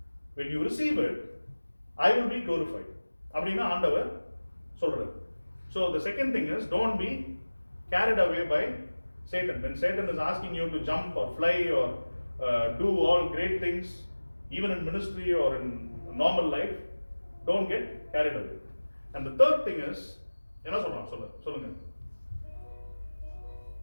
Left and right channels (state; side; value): inverted; both; correlation -1.00